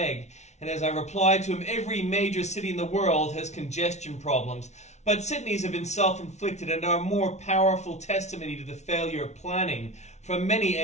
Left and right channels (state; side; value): late; right; 0.32 ms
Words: And as I replied to him, every major city in the world has congestion problems, but Sydney's have been self-inflicted and are a more powerful testimony to the failure of planning from many